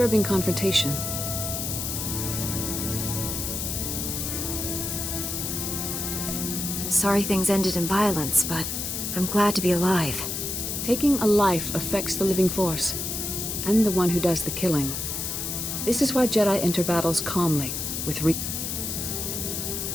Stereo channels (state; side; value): noise; left; hiss, 3 dB below the sound